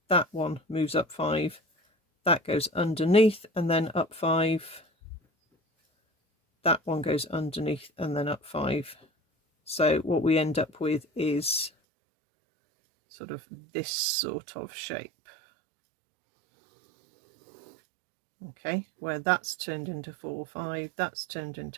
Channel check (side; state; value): left; drops out; at 11.7 s